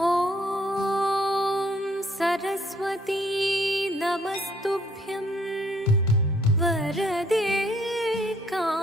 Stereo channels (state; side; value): normal; both; correlation 0.64